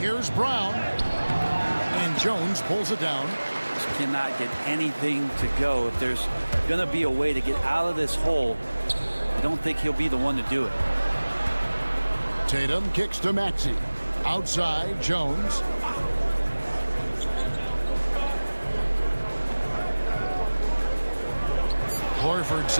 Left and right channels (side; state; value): both; inverted; correlation -1.00